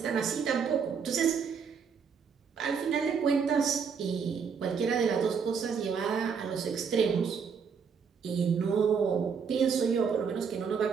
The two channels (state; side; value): quieter; left; 6.2 dB